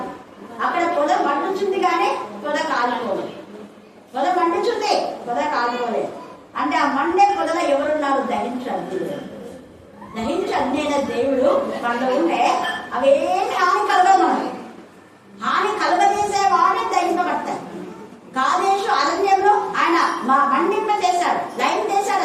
అక్కడ పొద మండుచుంది కానీ పొద కాలిపోలేదు. పొద మండుచుంది, పొద కాలిపోలేదు. అంటే ఆ మండే పొదలో ఎవరున్నారు? దహించండి. దహించండి అయిన దేవుడు మనలో ఉంటే అవేమి హాని కలగదు. మనకి హాని కలగజేసే వాడిని దహింపబడతాయి. కాదేశు అరణ్యంలో ఆయన మండింప చేశాడు, లైన్ చేశాడు,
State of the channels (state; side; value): identical; both; correlation 1.00